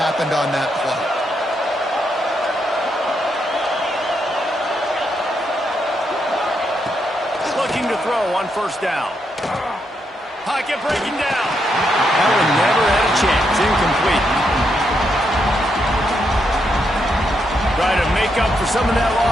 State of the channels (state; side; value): normal; both; correlation 0.80